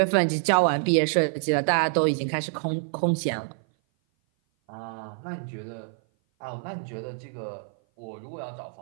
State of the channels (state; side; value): silent; left; 56 dB below the other